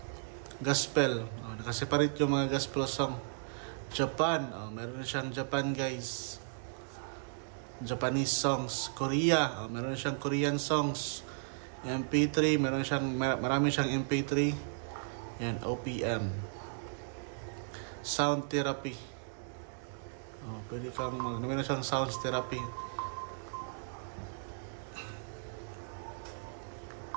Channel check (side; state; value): left; silent; digital silence